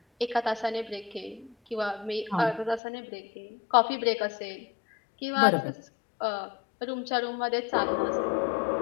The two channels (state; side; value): drops out; right; at 2.8 s